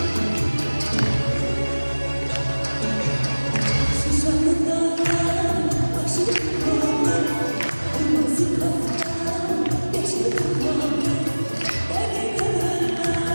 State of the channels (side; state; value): both; inverted; correlation -1.00